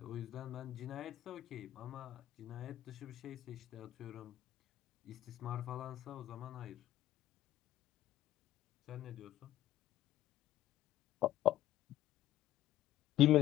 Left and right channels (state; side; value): quieter; right; 13.4 dB